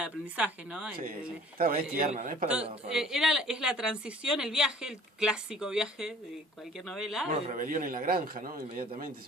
aprendizaje, ¿no? Sí. Está bien, tierna, ¿no? Es para es la transición, el viaje, el clásico viaje de cualquier novela. Bueno, Rebelión en la granja, ¿no? Inmediatamente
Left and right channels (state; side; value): normal; both; correlation 0.50